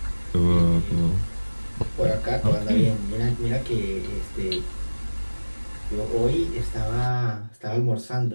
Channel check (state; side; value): inverted; both; correlation -1.00